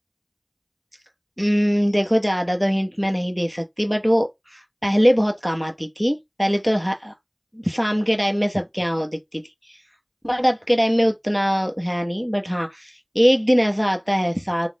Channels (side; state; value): both; identical; correlation 1.00